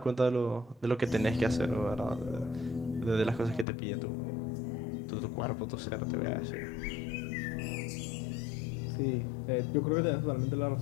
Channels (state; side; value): drops out; right; at 3.7 s